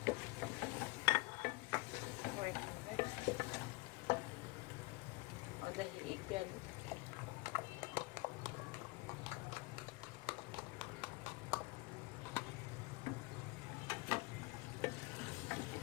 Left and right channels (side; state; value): right; quieter; 24.9 dB